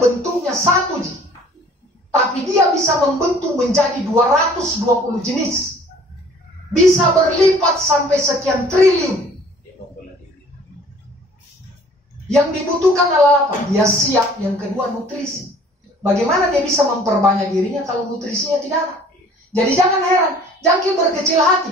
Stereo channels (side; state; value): both; normal; correlation 0.53